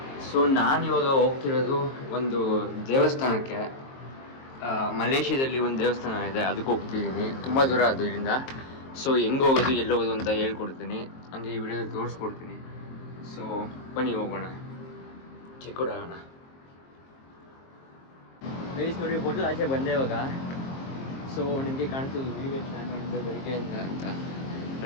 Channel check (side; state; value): right; late; 22 ms